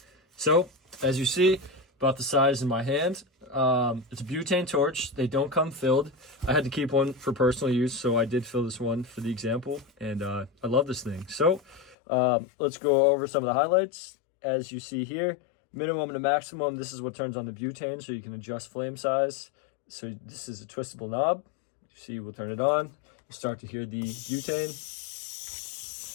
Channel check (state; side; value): drops out; right; at 12.0 s